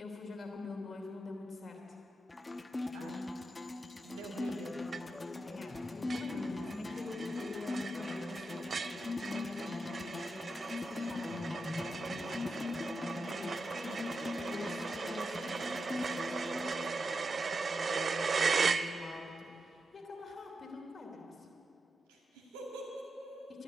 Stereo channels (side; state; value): both; normal; correlation 0.88